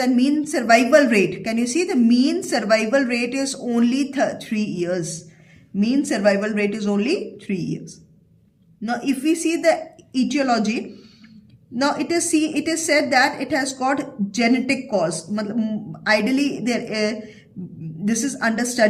mean survival rate. Can you see the mean survival rate is only 3 years. Mean survival rate is only 3 years. Now, if we see the etiology, now it is said that it has got genetic cause. Ideally, this is under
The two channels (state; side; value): identical; both; correlation 1.00